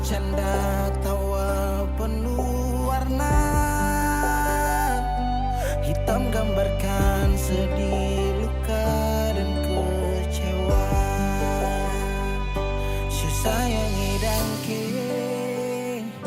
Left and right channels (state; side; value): identical; both; correlation 1.00